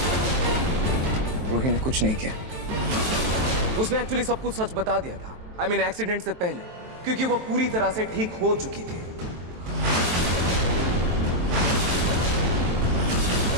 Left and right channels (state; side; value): late; left; 23 ms